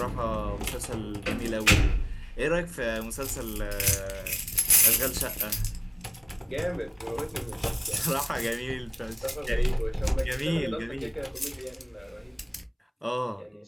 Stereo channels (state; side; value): identical; both; correlation 1.00